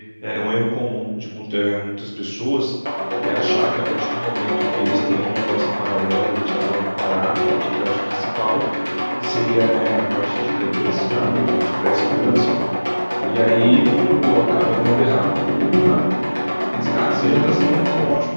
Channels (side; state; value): both; inverted; correlation -1.00